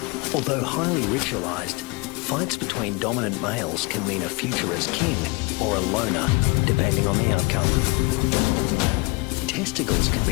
Although highly ritualized, fights between dominant males can mean a future as king or a loner, depending on the outcome. Testicles can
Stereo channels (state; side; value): quieter; right; 26.3 dB